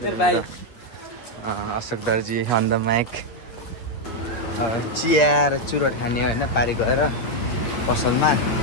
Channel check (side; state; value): right; late; 8.7 ms